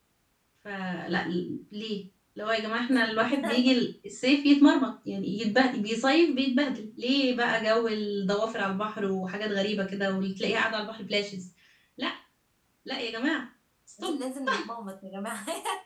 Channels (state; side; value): identical; both; correlation 1.00